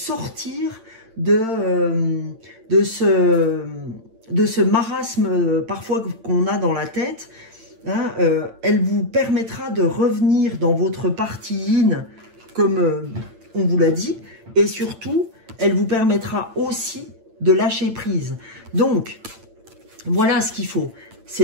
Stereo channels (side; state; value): left; late; 8.9 ms